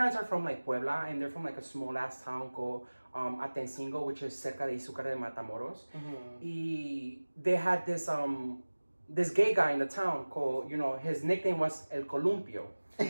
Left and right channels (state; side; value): inverted; both; correlation -1.00